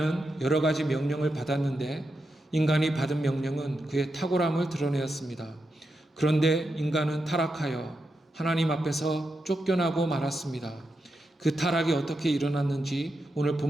여러 가지 명령을 받았는데 인간이 받은 명령은 그의 탁월함을 드러내었습니다. 그런데 인간은 타락하여 하나님 앞에서 쫓겨나고 말았습니다. 그 타락이 어떻게 일어났는지 오늘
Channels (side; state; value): both; normal; correlation 0.86